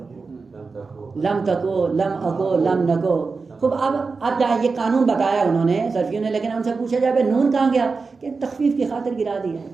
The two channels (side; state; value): left; quieter; 4.4 dB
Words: لم تکو، لم اکو، لم نکو. خوب اب یہ قانون بتایا انہوں نے صرفیوں نے، لیکن ان سے پوچھا جائے نون کہاں گیا؟ کہ تخفیف کی خاطر گرا دیا